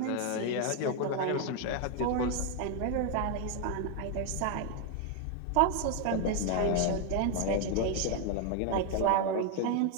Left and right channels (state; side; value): different; both; correlation 0.01